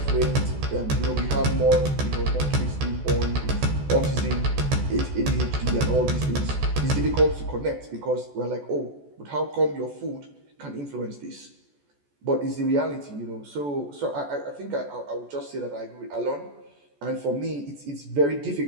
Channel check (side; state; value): left; late; 14 ms